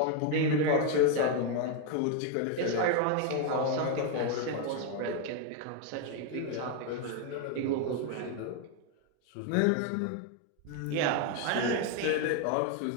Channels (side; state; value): both; different; correlation 0.01